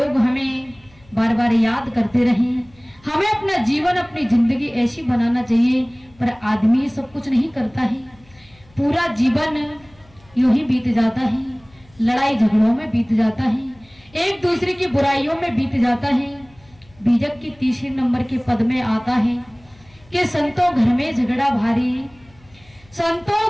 हमें बार बार याद करते रहे। हमें अपना जीवन, अपनी जिंदगी ऐसी बनाना चाहिए। पर आदमी सब कुछ नहीं करता है, पूरा जीवन यूं ही बीत जाता है, लड़ाई झगड़ों में बीत जाता है, एक दूसरे की बुराइयों में बीत जाता है। बीजक की तीसरे नंबर के पद में आता है कि संतों घर में झगड़ा भारी,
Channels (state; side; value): noise; left; hum, 28 dB below the sound